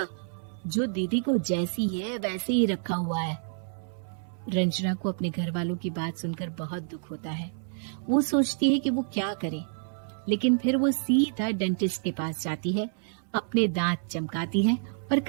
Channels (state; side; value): silent; left; 59 dB below the other